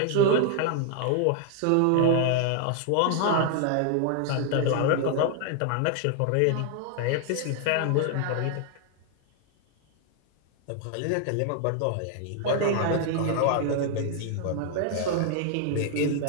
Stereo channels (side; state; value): both; different; correlation 0.00